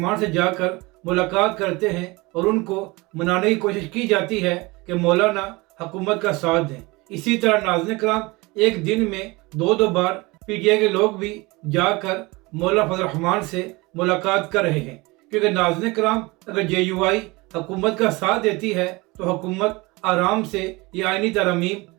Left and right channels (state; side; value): quieter; left; 23.7 dB